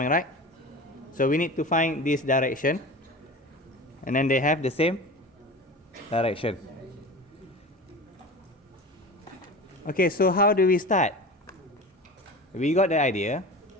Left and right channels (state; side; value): normal; both; correlation 0.33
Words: right? So we need to find this direction. And then they have the same direction. Okay, so how do we start? We got the idea.